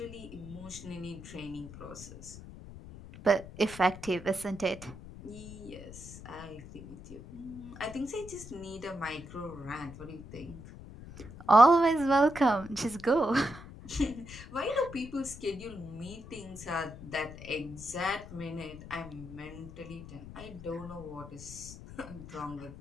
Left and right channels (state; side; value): noise; left; rumble, 14 dB below the sound